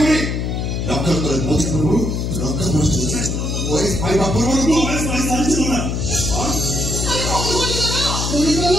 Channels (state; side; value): noise; left; hum, 1 dB below the sound